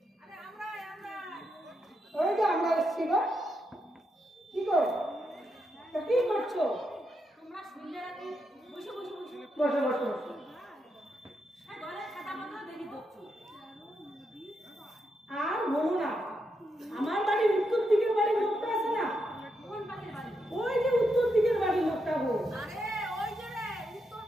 আরে আমরা ওই যে আমরা এসছি গো কি গো তা কি করছো তোমরা শুনলে রাতে বসে বসে বসে বসো বসো বসো ঘরে খাতা মতো দেখি দেখছো আর বলো না আমার বাড়ির উত্তর দিকের বাড়ির লোকটা আছে না কোন পাখির বাড়ি ওই যে উত্তর দিকের বাড়ির লোকটা গো আরে ওই যে রে উত্তর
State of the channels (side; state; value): both; normal; correlation 0.82